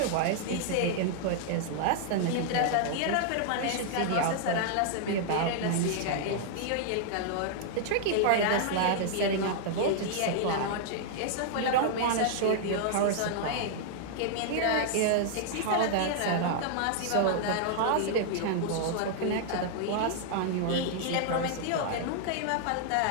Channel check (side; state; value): both; different; correlation -0.01